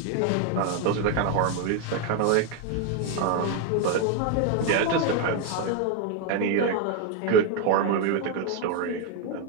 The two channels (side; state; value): both; different; correlation 0.01